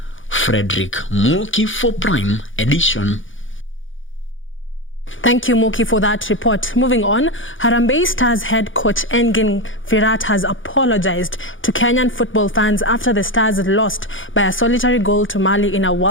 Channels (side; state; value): right; late; 0.57 ms